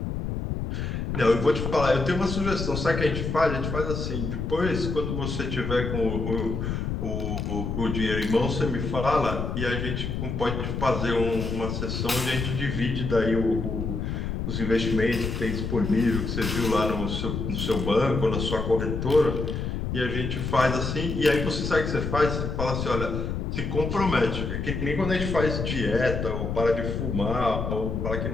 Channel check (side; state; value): left; noise; rumble, 3 dB below the sound